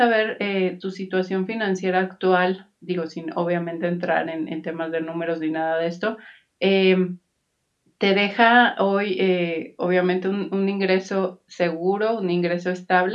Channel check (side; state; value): both; identical; correlation 1.00